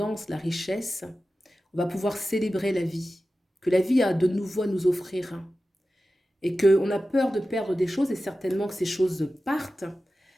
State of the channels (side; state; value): both; normal; correlation 0.94